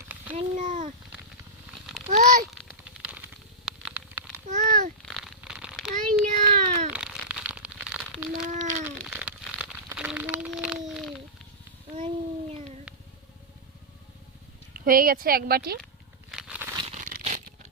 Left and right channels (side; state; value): both; normal; correlation -0.14